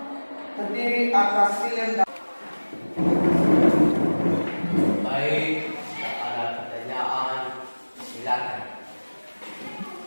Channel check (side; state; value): both; inverted; correlation -1.00